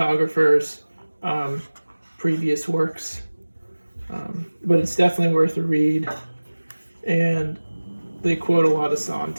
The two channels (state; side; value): inverted; both; correlation -1.00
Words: previous works. But it's definitely worth a read. And they quote a lot of